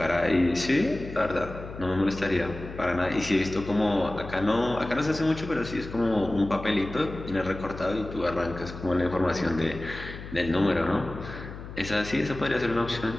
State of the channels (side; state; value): left; noise; hum, 12 dB below the sound